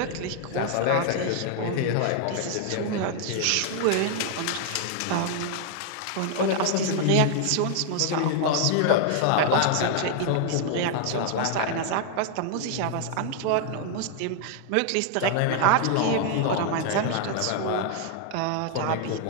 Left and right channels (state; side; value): different; both; correlation 0.00